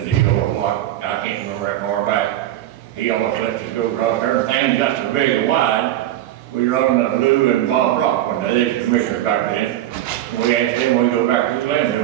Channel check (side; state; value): left; quieter; 13.2 dB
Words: deal or what, I can't remember that far back. He almost let us go across there, things got so big and wide, we run into Lou and Bob Rock when they was commissioners back then. We asked them, we go back to the landfill,